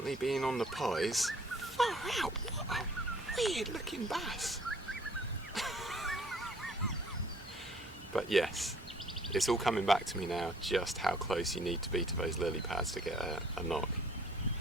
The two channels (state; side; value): normal; both; correlation 0.58